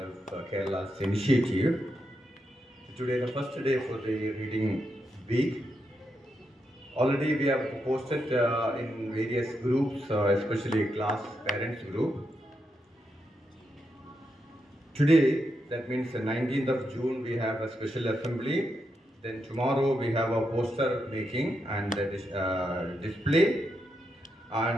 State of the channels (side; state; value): both; normal; correlation 0.83